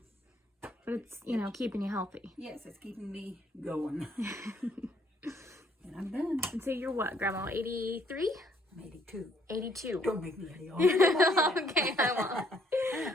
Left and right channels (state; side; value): normal; both; correlation 0.66